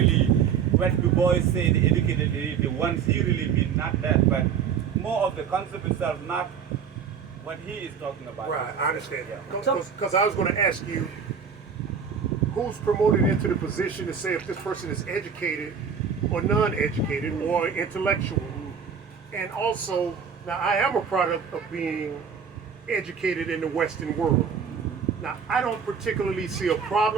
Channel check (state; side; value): quieter; left; 6.9 dB